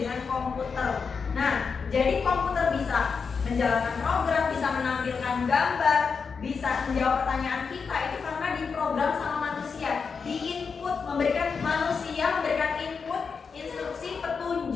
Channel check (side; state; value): right; quieter; 5.5 dB